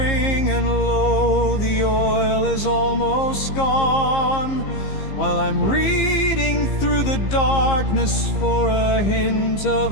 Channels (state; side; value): late; right; 15 ms